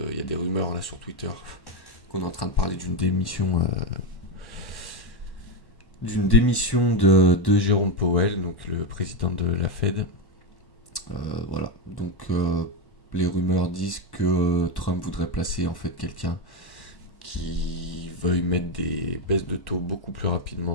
il y a des rumeurs là sur Twitter qu'on est en train de parler d'une démission de Jérôme Powell, donc le président de la Fed. Voilà. Donc les rumeurs disent que Trump voudrait placer en fait quelqu'un qui veuille mettre des baisses de taux beaucoup plus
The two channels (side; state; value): right; late; 1.1 ms